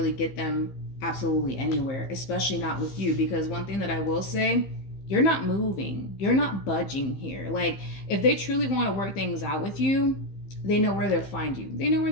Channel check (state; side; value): late; right; 15 ms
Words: get them absolutely anywhere, especially not with you. Because one thing that I will say, you're not moving. You're not budging here. Like, if they truly want to work things out with you, they know where to find you. They know